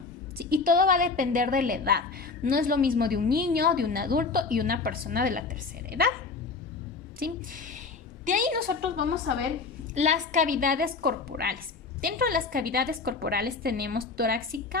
¿sí? Y todo va a depender de la edad. No es lo mismo de un niño, de un adulto y una persona de la tercera edad, ¿sí? De ahí nosotros vamos a ver las cavidades corporales. Dentro de las cavidades corporales tenemos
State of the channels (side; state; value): right; quieter; 4.4 dB